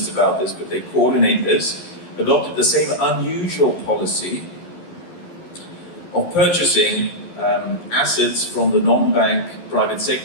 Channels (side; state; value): right; late; 11 ms